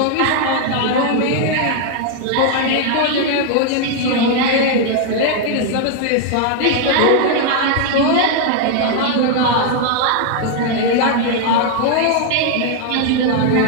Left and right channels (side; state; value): both; different; correlation 0.00